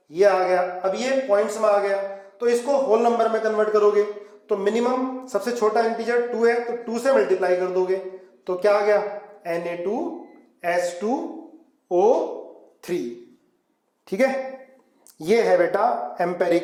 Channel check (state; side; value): identical; both; correlation 1.00